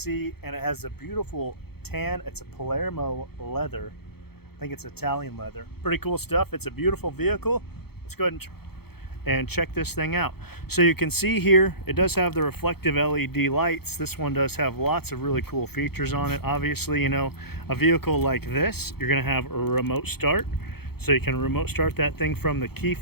and it has a beautiful tan. It's a Palermo leather. I think it's Italian leather. Pretty cool stuff. It's a beautiful vehicle. Let's go ahead and check this thing out. So you can see here, it does have the reflective LED lights. This one does have lots of really cool features on it. Obviously, you know, a vehicle like this, you're gonna have a remote start. So you can remote start that thing from the key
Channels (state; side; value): late; right; 0.96 ms